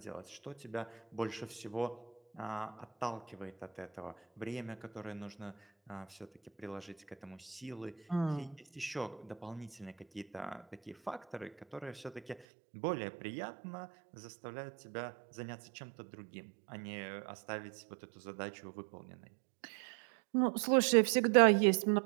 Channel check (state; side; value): drops out; left; at 12.4 s